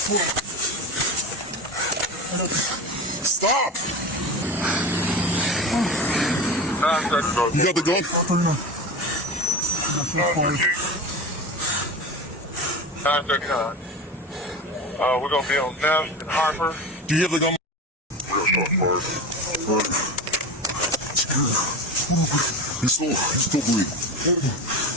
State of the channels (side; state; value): both; normal; correlation 0.26